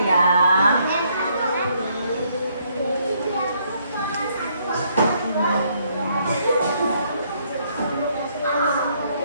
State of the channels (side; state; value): both; inverted; correlation -0.70